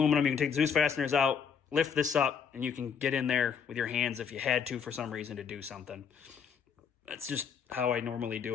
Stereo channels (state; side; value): quieter; right; 7.0 dB